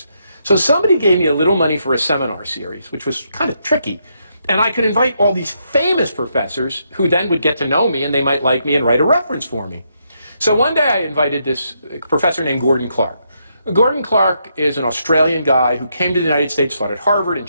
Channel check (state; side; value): inverted; both; correlation -0.78